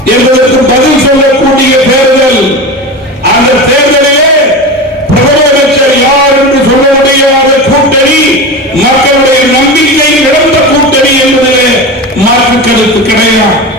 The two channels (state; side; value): normal; both; correlation 0.26